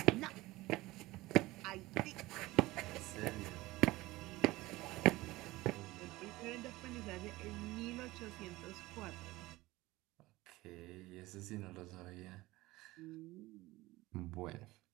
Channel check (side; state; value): left; quieter; 19.2 dB